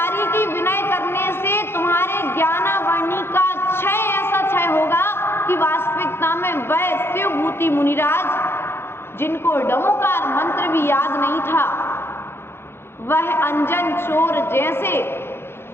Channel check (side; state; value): right; late; 0.11 ms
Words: की विनय करने से तुम्हारे ज्ञानावर्णी का क्षय ऐसा क्षय होगा कि वास्तविकता में वह शिवभूति मुनिराज, जिनको डमोकार मंत्र भी याद नहीं था, वह अंजन चोर जैसे